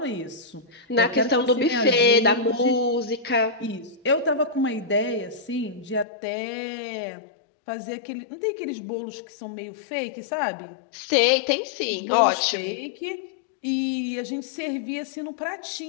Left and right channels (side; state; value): right; drops out; at 6.1 s